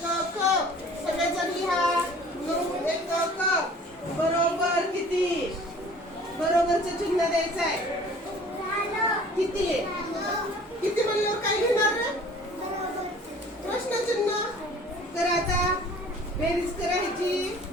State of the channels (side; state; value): both; normal; correlation 0.49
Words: सगळेजण लिहा. 9 एकक बरोबर किती? बरोबरचं चिन्ह द्यायचं आहे. किती किती म्हणल्यावर काय घेणार रे? प्रश्नचिन्ह. तर आता बेरीज करायची.